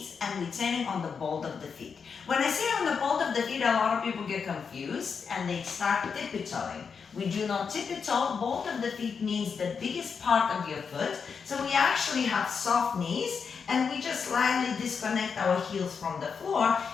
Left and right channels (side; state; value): right; quieter; 6.0 dB